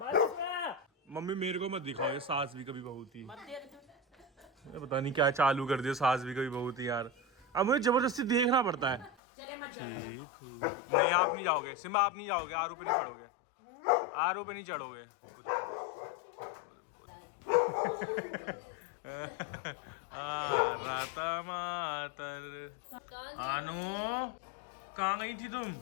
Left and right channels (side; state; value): right; drops out; at 9.2 s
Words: बस। मम्मी मेरे को मत दिखाओ ये सास भी कभी बहुत ही, पता नहीं क्या चालू कर दिया सास भी कभी बहुत ही यार। अब मुझे जबरदस्ती देखना पड़ता है। ठीक नहीं, आप नहीं जाओगे सिम्बा, आप नहीं जाओगे, आरू पे नहीं चढ़ोगे, आरू पे नहीं चढ़ोगे। राता मातर आनू कहाँ गई थी तुम?